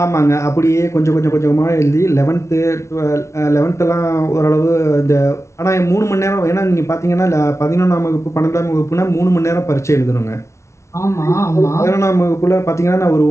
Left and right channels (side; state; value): right; late; 0.13 ms